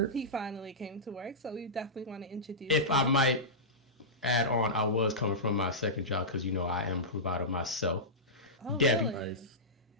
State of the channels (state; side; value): normal; both; correlation -0.15